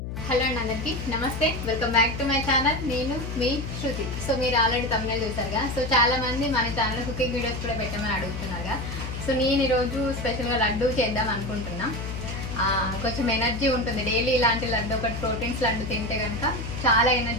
Hello అండి అందరికీ నమస్తే, welcome back to my channel. నేను మీ శృతి. సో మీరు ఆల్రెడీ తమిళ చూసారుగా. సో చాలా మంది మన ఛానల్ కుకింగ్ వీడియోస్ కూడా పెట్టమని అడుగుతున్నారుగా. సో నేను ఈరోజు స్పెషల్గా లడ్డు చేద్దాం అనుకుంటున్నా. కొంచెం ఎనర్జీ ఉంటుంది డైలీ ఇలాంటి లడ్డు, ఒకటి ప్రోటీన్స్ లడ్డు తింటే కనుక చాలా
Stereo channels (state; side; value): noise; left; hum, 6 dB below the sound